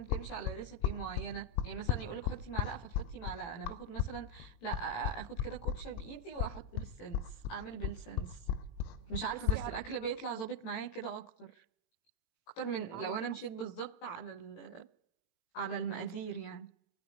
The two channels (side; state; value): right; late; 18 ms